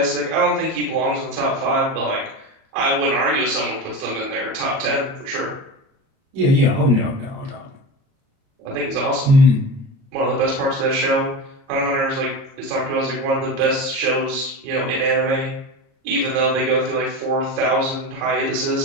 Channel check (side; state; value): left; late; 38 ms